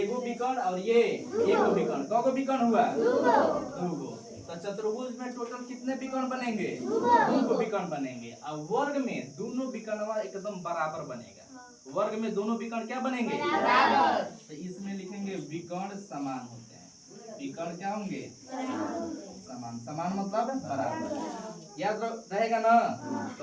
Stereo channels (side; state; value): both; identical; correlation 1.00